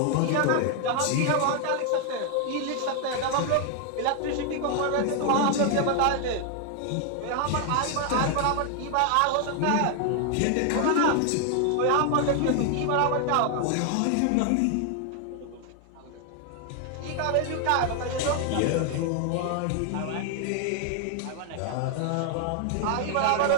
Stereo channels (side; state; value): both; different; correlation 0.00